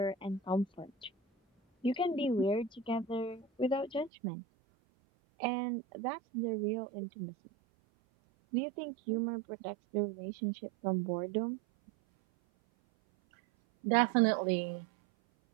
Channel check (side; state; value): left; drops out; at 4.1 s